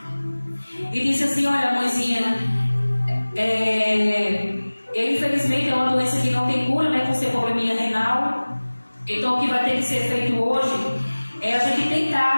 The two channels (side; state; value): both; inverted; correlation -1.00